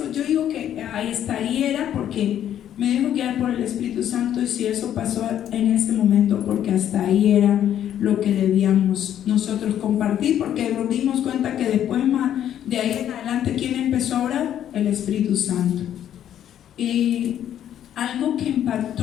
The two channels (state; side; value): quieter; right; 10.6 dB